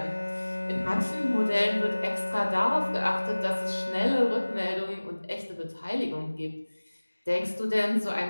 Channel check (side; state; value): both; inverted; correlation -1.00